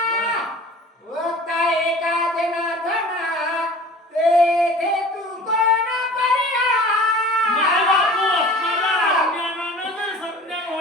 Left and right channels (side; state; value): both; normal; correlation 0.42